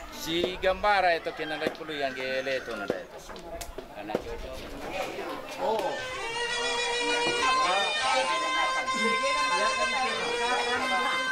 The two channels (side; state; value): both; identical; correlation 1.00